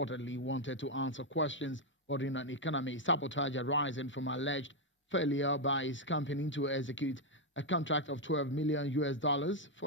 wanted to answer questions ordering an economic sabotage arising from alleged failure by his company to execute a contract of $12 million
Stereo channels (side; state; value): both; normal; correlation 0.02